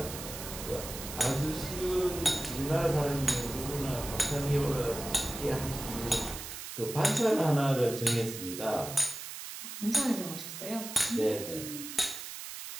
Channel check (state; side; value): noise; right; hiss, 9 dB below the sound